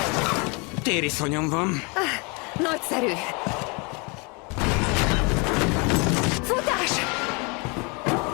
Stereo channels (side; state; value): right; quieter; 30.9 dB